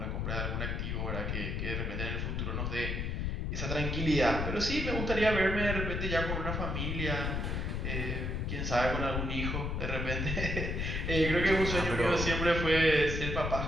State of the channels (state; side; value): noise; left; rumble, 1 dB below the sound